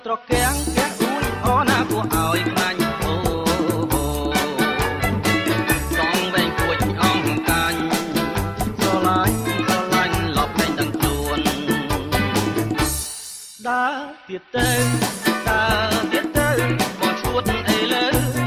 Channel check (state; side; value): identical; both; correlation 1.00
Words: ត្រកៀងកែអួយអណាគួរឲ្យខ្លាញ់អូសងវែងគួចអងកាញ់ស្រឡាញ់លប់លែងដឹងខ្លួនដើរទៀតទៅបងឈួតអីលើ